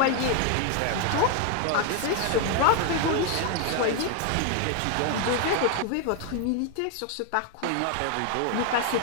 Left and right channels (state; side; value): different; both; correlation 0.00